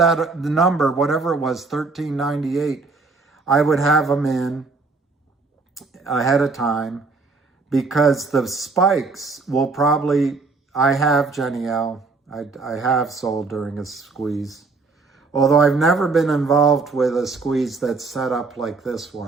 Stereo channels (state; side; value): quieter; left; 4.0 dB